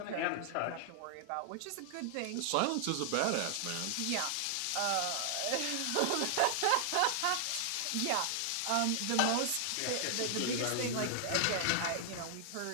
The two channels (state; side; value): different; both; correlation 0.00